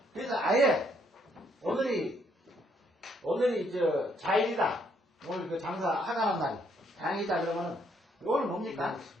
그래서 아예 오늘이 자일이다. 오늘 그 장사 하간한 날이 장이다 그러면은 요거는 뭡니까?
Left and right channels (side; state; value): both; normal; correlation 0.70